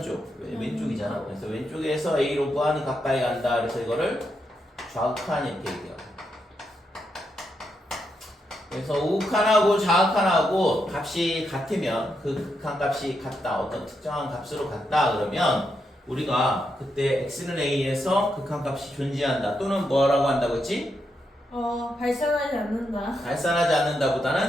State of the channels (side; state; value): both; normal; correlation 0.82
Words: 쪽 왼쪽이잖아. 그래서 왼쪽에서 a로 무한히 가까이 간다. 그래서 이거를 좌극한 이렇게 얘기해요. 그래서 우극한하고 좌극한하고 값이 같으면 그 극한값이 같다. 어떤 특정한 값으로 같다. 그러면 우리가 그때 x는 a에서 극한값이 존재한다. 또는 뭐라고 한다고 했지? 발산하지 않는다. 발산하지